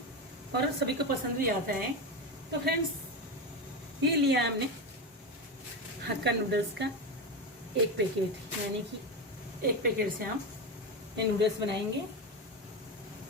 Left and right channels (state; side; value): normal; both; correlation 0.17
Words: और सभी को पसंद भी आता है। तो फ्रेंड्स, ये लिया हमने हक्का नूडल्स का एक पैकेट, यानी कि एक पैकेट से हम ये नूडल्स बनाएंगे